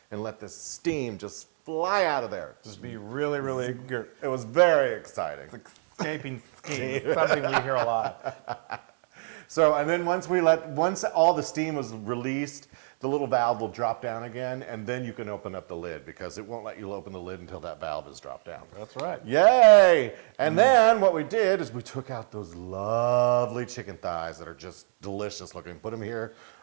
and let the steam just fly out of there. Just be really, really good. It was very exciting. Escaping steam, something we hear a lot. So, and then once all the steam was released, the little valve will drop down again, and then you can open up the lid because it won't let you open the lid until that valve is dropped down. That's right. Yay! And then what we did is we took out those lovely chicken thighs that are just delicious looking. Put them here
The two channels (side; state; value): left; silent; digital silence